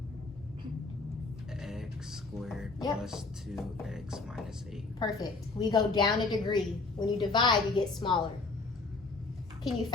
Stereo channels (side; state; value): right; quieter; 3.7 dB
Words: X squared Yep. plus 2x minus 8. Perfect. We go down a degree. When you divide, you get smaller. Can you